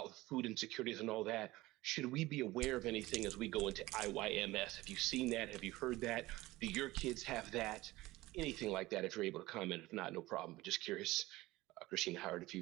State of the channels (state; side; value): quieter; left; 18.8 dB